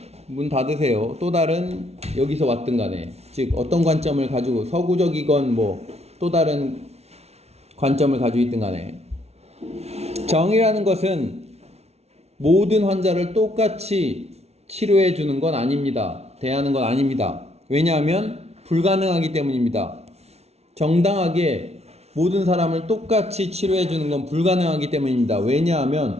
문 닫으세요. 또 다른 여기서 왔든 간에 즉 어떤 관점을 가지고 서구적이건 뭐 또 다른 관점을 가지고 있든 간에 정의라는 것은 모든 환자를 똑같이 치료해 주는 건 아닙니다. 대하는 건 아닙니다. 왜냐하면 불가능하기 때문입니다. 정당하게 모든 사람을 똑같이 치료해 주는 건 불가능하기 때문입니다.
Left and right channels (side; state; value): left; late; 0.31 ms